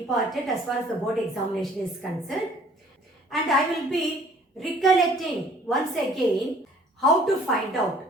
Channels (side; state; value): both; normal; correlation 0.55